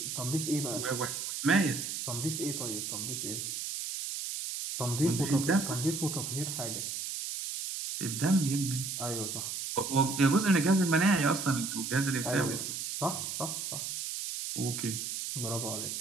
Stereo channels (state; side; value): noise; right; hiss, 4 dB below the sound